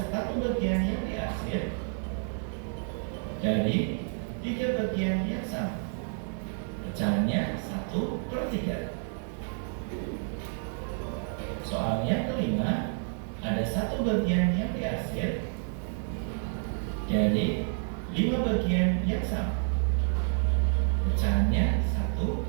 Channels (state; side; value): silent; left; 58 dB below the other